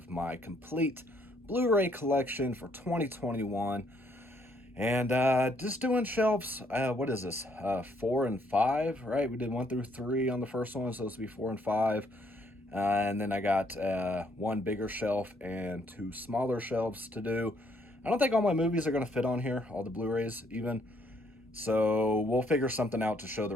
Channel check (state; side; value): normal; both; correlation 0.69